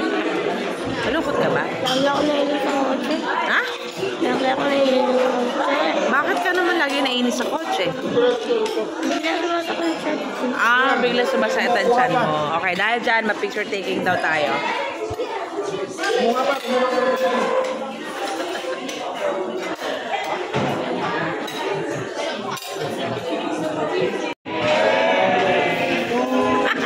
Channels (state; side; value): identical; both; correlation 1.00